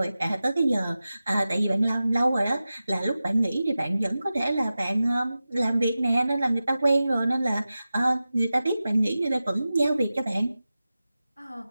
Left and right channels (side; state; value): both; inverted; correlation -0.94